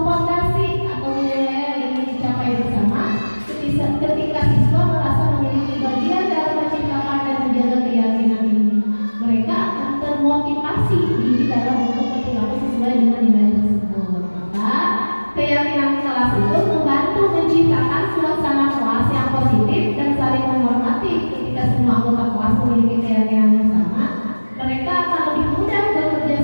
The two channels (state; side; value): inverted; both; correlation -1.00